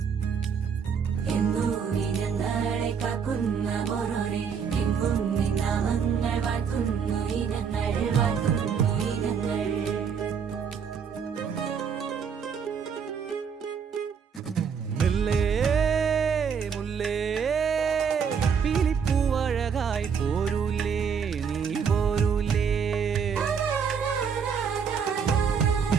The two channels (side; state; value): left; quieter; 6.7 dB